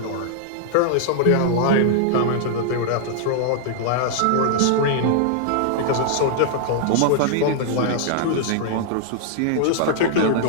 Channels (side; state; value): both; different; correlation -0.01